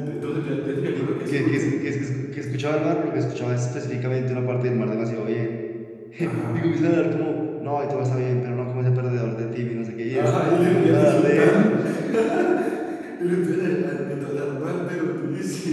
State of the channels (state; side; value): identical; both; correlation 1.00